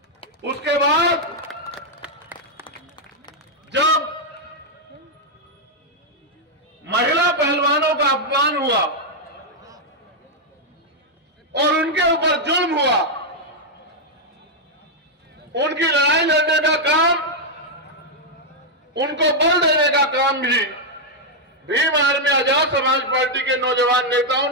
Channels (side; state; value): both; normal; correlation -0.02